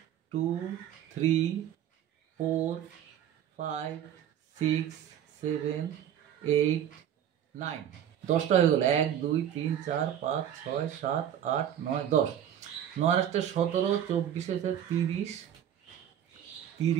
2, 3, 4, 5, 6, 7, 8, 9। 10টা হয়ে গেল। 1, 2, 3, 4, 5, 6, 7, 8, 9, 10। 9 আসতে 17, 24 আছে 30,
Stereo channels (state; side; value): quieter; left; 10.2 dB